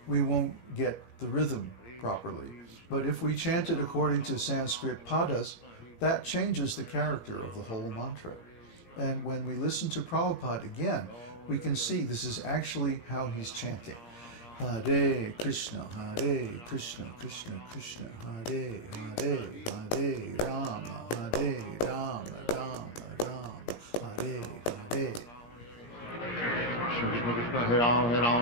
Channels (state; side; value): late; right; 17 ms